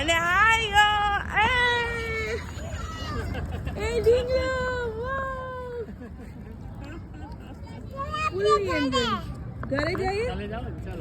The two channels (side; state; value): both; identical; correlation 1.00